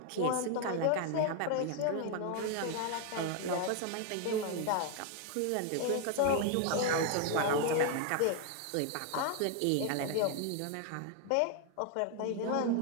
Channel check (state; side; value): different; both; correlation 0.00